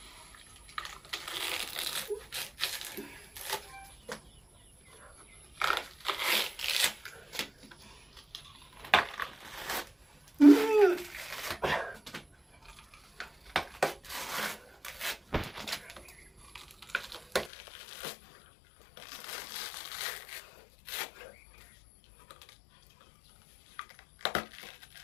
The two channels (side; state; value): right; drops out; at 17.5 s